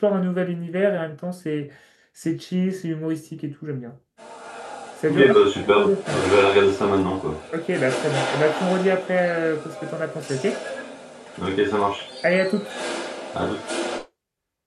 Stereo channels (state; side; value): identical; both; correlation 1.00